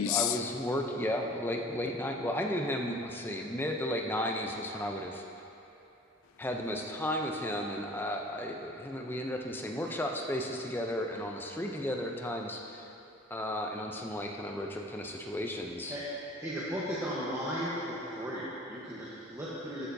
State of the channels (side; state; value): both; normal; correlation 0.47